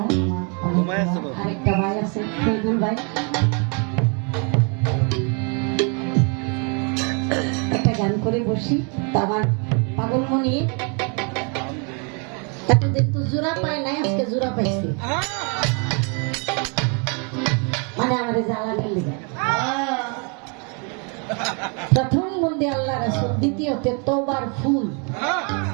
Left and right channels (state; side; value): quieter; left; 36.2 dB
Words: আরেকটা ভাই আছে ফেদুল ভাই, একটা গান করে বসি। তো আমার পাগলমণি এতদিন তো জোড়া পায় নাই, আজকে জোড়া পাইছে, মানে আমাদের জ্বালানির লেগে। প্রথম বন্দে আল্লাহ রাসূল, দ্বিতীয়তে তওবার ফুল।